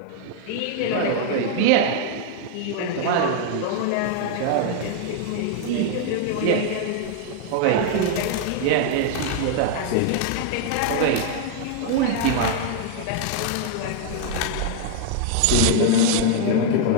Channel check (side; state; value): both; different; correlation 0.00